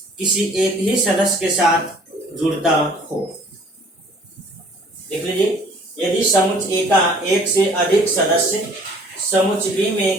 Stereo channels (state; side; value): normal; both; correlation 0.54